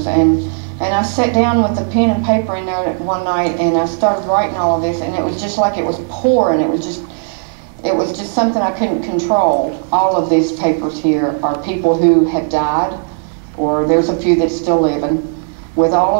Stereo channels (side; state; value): left; silent; 70 dB below the other